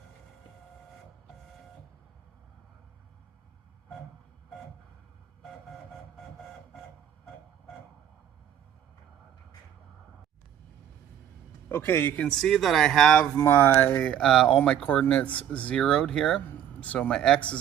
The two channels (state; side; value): quieter; left; 10.0 dB